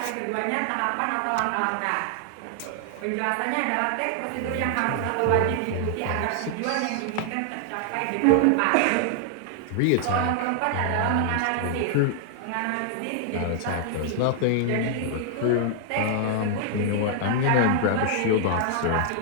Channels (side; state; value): both; different; correlation 0.00